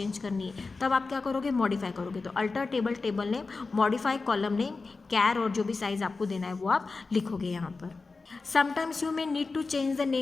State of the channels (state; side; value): quieter; right; 4.0 dB